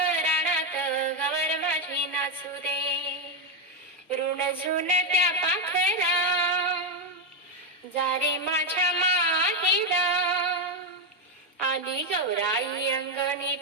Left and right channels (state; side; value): normal; both; correlation 0.06